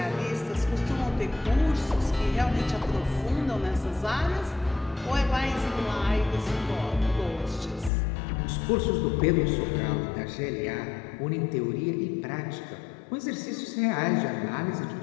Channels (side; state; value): right; drops out; at 7.9 s